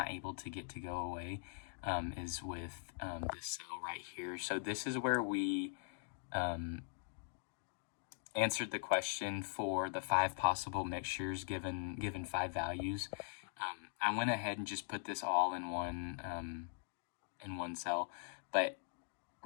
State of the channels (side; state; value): right; silent; digital silence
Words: able to get to go away, is with this cell right here. So this is where we answered the question for the 5 possible mixtures given 5 values. I went ahead and just put this all in one cell, but